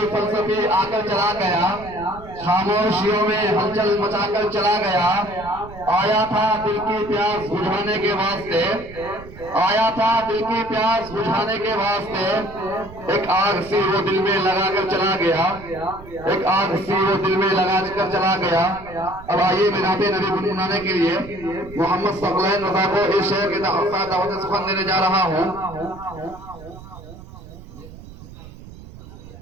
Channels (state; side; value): noise; right; rumble, 17 dB below the sound